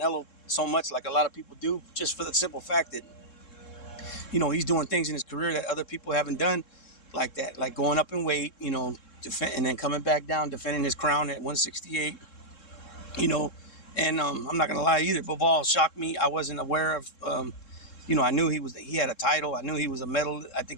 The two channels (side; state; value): right; late; 3.7 ms